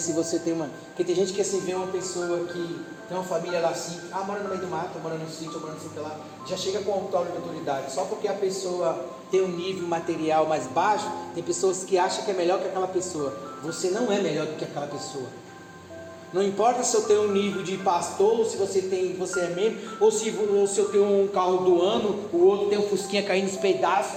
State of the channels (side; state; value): both; identical; correlation 1.00